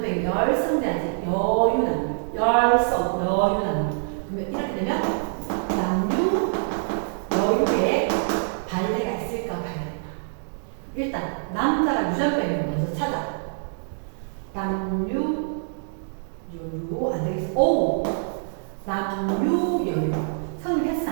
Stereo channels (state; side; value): silent; left; digital silence